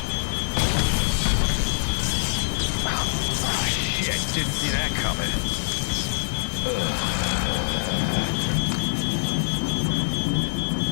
Oh, shit, didn't see that coming.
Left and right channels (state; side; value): silent; right; digital silence